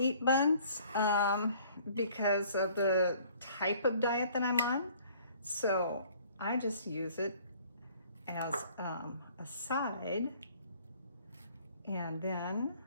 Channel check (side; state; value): both; inverted; correlation -0.56